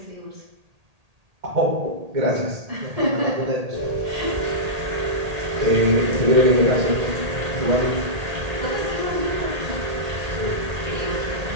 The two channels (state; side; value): late; left; 1.8 ms